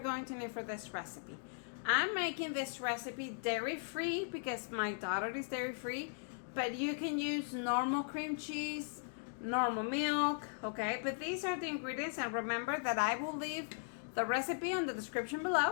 going to need for this recipe. I'm making this recipe dairy-free because my daughter is dairy-free, but you can use normal cream cheese, normal milk, okay? But these are the ingredients, and remember that I will leave the recipe on the description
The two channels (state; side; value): silent; right; digital silence